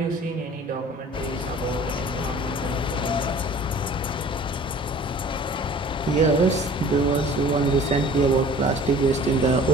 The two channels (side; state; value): both; normal; correlation 0.47